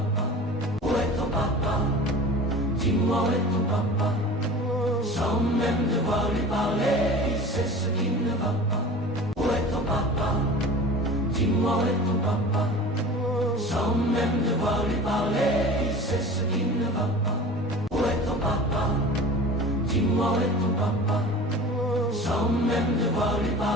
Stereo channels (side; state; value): both; normal; correlation 0.38